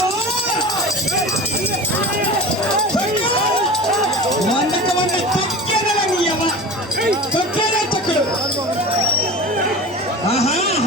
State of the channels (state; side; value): normal; both; correlation 0.34